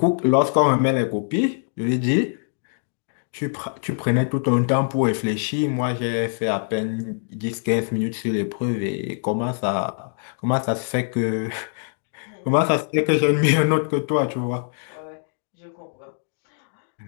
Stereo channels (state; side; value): silent; right; digital silence